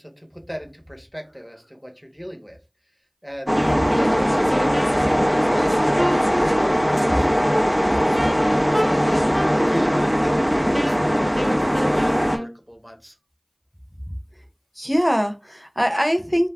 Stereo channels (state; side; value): identical; both; correlation 1.00